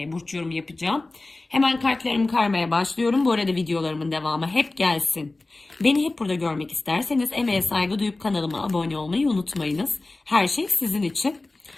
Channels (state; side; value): quieter; right; 3.1 dB